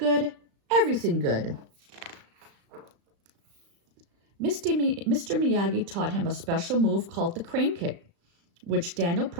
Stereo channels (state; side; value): late; left; 35 ms